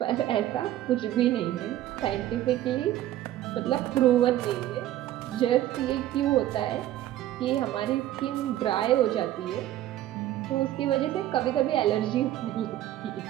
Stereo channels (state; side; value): quieter; left; 13.4 dB